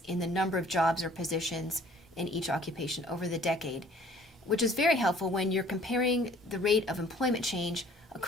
in the number of jobs or positions in each occupation over the decade, which is very helpful when you're comparing the rate of employment change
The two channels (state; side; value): normal; both; correlation 0.55